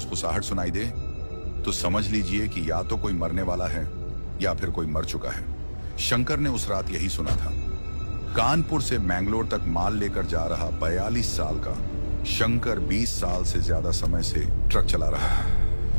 सुनाई दे तो समझ लीजिए कि या तो कोई मरने वाला है या फिर कोई मर चुका है। शंकर ने उस रात यही सुना था। कानपुर से मैंगलोर तक माल लेकर जा रहा 42 साल का शंकर 20 साल से ज्यादा समय से ट्रक चला रहा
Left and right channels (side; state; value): both; inverted; correlation -1.00